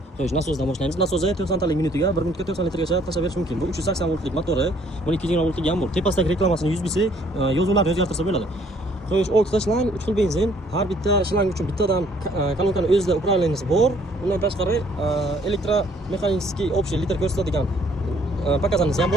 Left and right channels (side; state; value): both; normal; correlation 0.62